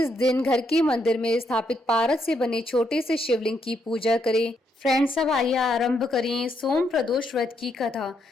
दिन घर के मंदिर में स्थापित पारस से बने छोटे से शिवलिंग की पूजा करें। फ्रेंड्स, अब आइए आरंभ करें सोम प्रदोष व्रत की कथा।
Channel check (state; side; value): normal; both; correlation 0.77